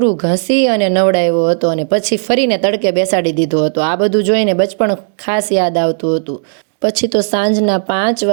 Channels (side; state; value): left; silent; digital silence